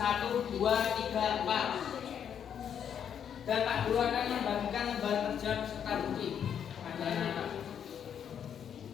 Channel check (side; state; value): right; quieter; 8.5 dB